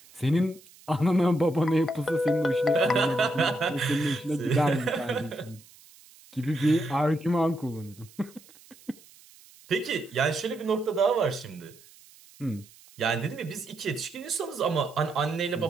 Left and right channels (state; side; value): noise; right; hiss, 25 dB below the sound